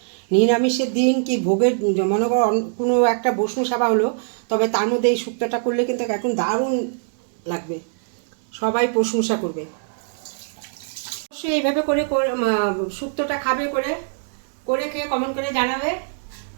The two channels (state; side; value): silent; left; digital silence